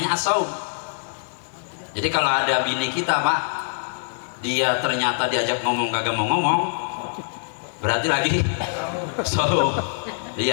as-saum. Jadi kalau ada bini kita Pak, dia ternyata diajak ngomong kagak mau ngomong, berarti lagi saum.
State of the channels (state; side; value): silent; right; 63 dB below the other